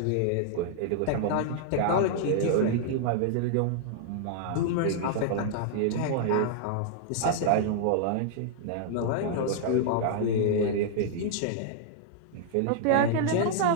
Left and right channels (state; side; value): different; both; correlation -0.01